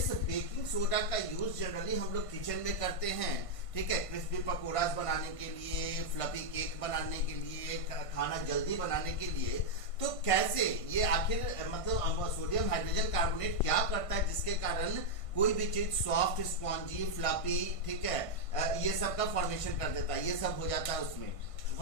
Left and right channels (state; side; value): late; right; 1.5 ms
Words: बेकिंग सोडा का यूज जनरली हम लोग किचन में करते हैं, ठीक है, क्रिस्पी पकौड़ास बनाने के लिए, फ्लफी केक बनाने के लिए, खाना जल्दी बनाने के लिए। तो कैसे ये आखिर मतलब सोडियम हाइड्रोजन कार्बोनेट क्या करता है जिसके कारण कोई भी चीज सॉफ्ट, स्पॉन्जी, फ्लफी, ठीक है, ये सब का फॉर्मेशन कर देता है, ये सब हो जाता है उसमें।